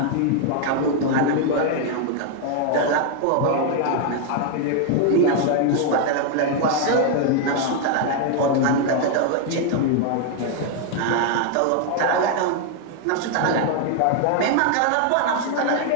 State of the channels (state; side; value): different; both; correlation 0.00